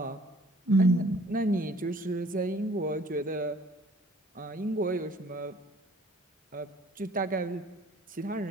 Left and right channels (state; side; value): normal; both; correlation 0.55